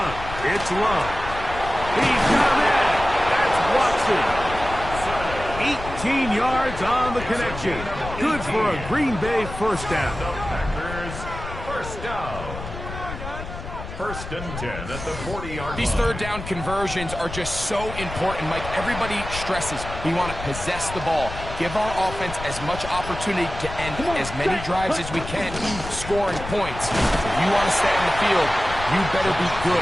it's Love. He's got it. That's Watson. 18 yards on the connection. Good for a Green Bay first down. The Packers first down. First and 10 at the 40-yard line. These third down conversions are just so important, Mike. Everybody stresses we want to possess the ball, give our offense as much opportunity to end as many drives as we can, scoring points. If you want to stay on the field, you better be good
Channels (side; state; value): left; noise; rumble, 10 dB below the sound